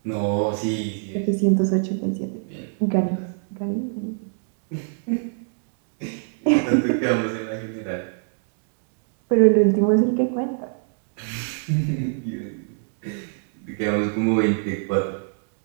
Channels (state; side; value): silent; left; 62 dB below the other